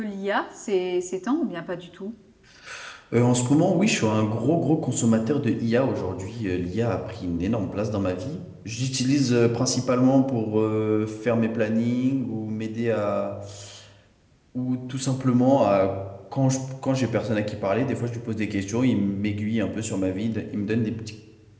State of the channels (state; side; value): identical; both; correlation 1.00